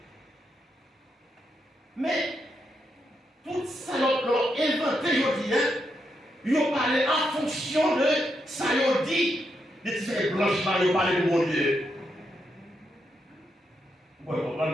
Mais, tout ça, l'ont inventé aujourd'hui, ils ont parlé en fonction de ça, ils ont dit, de ces blanches là, ils ont parlé de mon Dieu. Vous pouvez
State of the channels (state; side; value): normal; both; correlation 0.82